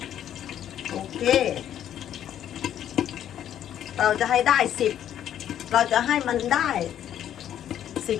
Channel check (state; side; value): quieter; right; 10.6 dB